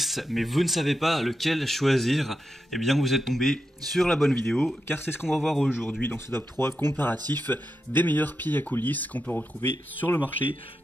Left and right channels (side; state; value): both; normal; correlation 0.87